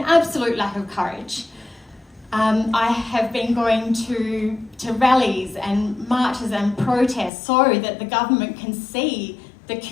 lack of courage. I have been going to rallies and marches and protests so that the government can see the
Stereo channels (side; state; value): right; drops out; at 7.3 s